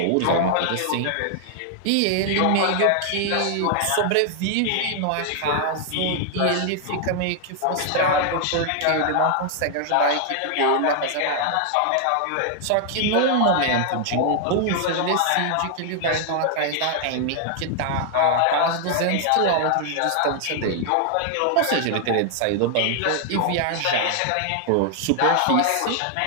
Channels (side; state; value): both; different; correlation 0.00